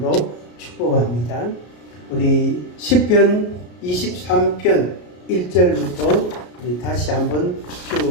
축복합니다. 우리 시편 23편 1절부터 우리 다시 한번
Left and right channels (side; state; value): right; late; 33 ms